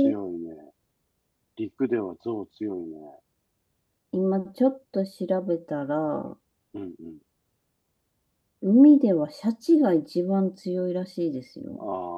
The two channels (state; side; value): identical; both; correlation 1.00